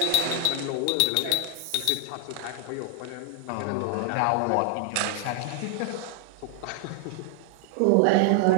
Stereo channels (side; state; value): both; different; correlation 0.00